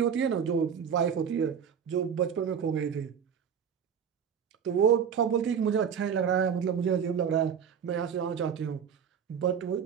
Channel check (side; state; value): left; quieter; 7.5 dB